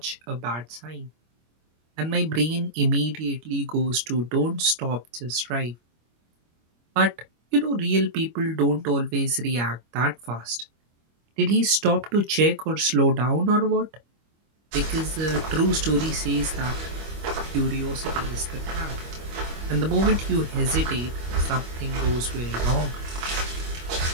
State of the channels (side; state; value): left; late; 25 ms